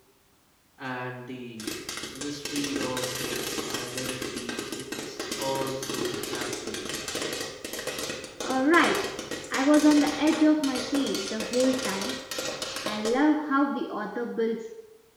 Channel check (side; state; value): both; identical; correlation 1.00